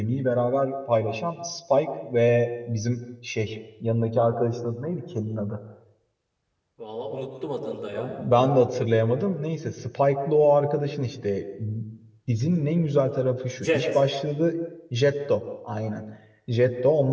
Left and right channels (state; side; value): identical; both; correlation 1.00